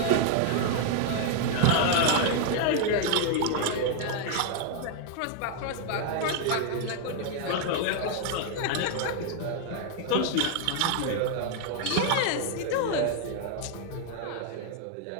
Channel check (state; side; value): different; both; correlation 0.00